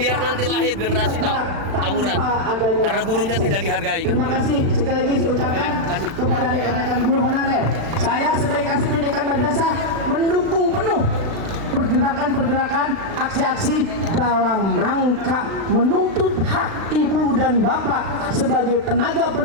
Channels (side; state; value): left; late; 36 ms